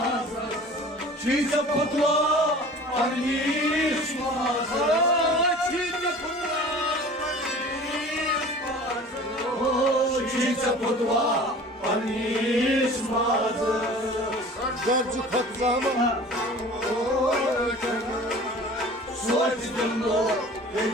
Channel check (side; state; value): both; normal; correlation 0.43